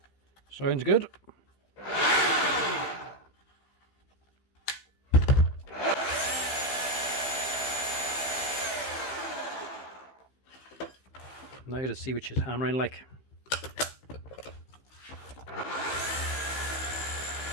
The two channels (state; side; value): late; right; 15 ms